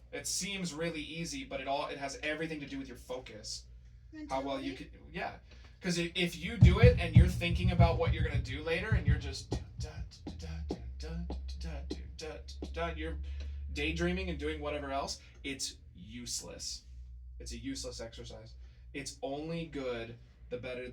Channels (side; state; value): both; identical; correlation 1.00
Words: It seems really easy, but it has everything to do with your focus. How well you can, yeah. Because if you do it and you're thinking about what you're gonna do later, and you're just you're daydreaming and doing whatever else, it's useless. It's a useless exercise. It's only good the better